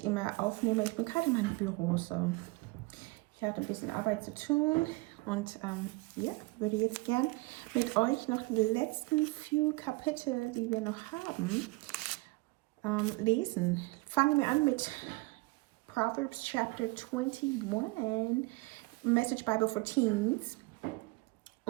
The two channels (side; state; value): left; quieter; 23.8 dB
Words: immer aufnehme. Ich bin gerade in meinem Büro, so. Ich hatte ein bisschen Arbeit zu tun und würde jetzt gern mit euch noch die letzten few Kapitel, die wir noch haben, lesen. Fangen wir an mit Proverbs Chapter 21, Message Bible for Teens.